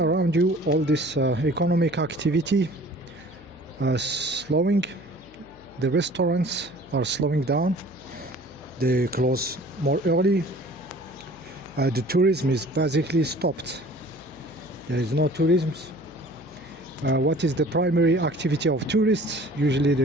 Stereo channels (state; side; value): noise; left; hum, 25 dB below the sound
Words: you all this economic activity slowing, the restaurants are slowing down, they close more early, the tourism is basically stopped. There is no tourism. What is the primary activity of tourists? Usually